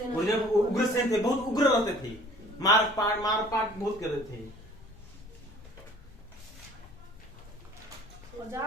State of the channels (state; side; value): noise; left; rumble, 21 dB below the sound